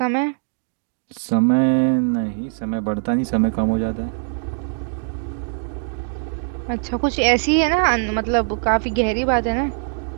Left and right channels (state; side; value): silent; left; digital silence